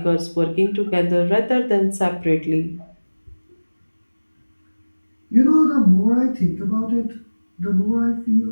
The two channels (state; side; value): inverted; both; correlation -1.00